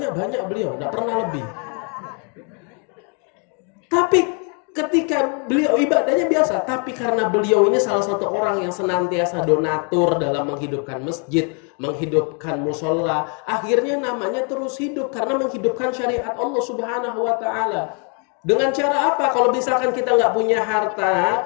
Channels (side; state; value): right; quieter; 38.6 dB